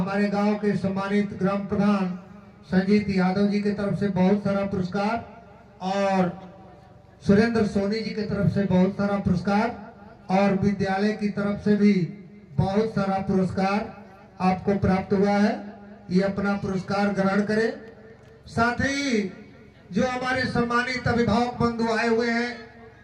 गांव के सम्मानित ग्राम प्रधान संजीत यादव जी की तरफ से बहुत सारा पुरस्कार और सुरेंद्र सोनी जी की तरफ से बहुत सारा पुरस्कार और विद्यालय की तरफ से भी बहुत सारा पुरस्कार आपको प्राप्त हुआ है। ये अपना पुरस्कार ग्रहण करें। साथ ही जो हमारे सम्मानित अभिभावक बंधु आए हुए हैं,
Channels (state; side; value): identical; both; correlation 1.00